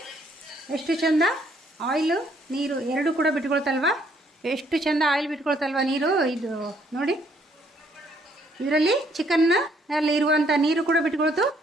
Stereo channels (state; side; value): normal; both; correlation 0.67